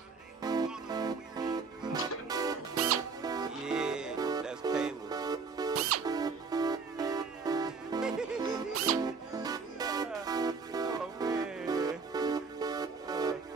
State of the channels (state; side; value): quieter; left; 4.8 dB